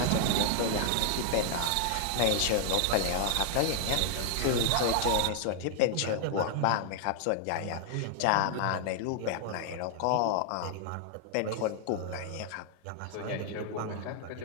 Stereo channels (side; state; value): both; different; correlation -0.01